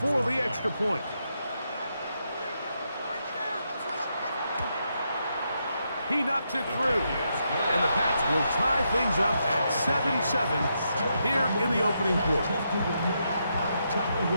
for the extra point. He knocks it through. And the Pats will tie things up at 7-7 here in the opening quarter.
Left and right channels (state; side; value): inverted; both; correlation -0.81